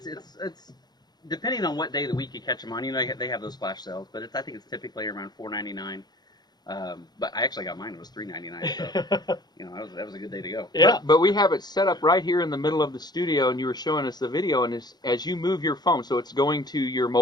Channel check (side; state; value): right; late; 0.20 ms